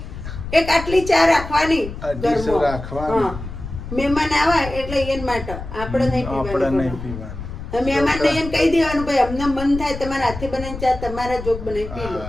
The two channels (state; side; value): noise; left; rumble, 9 dB below the sound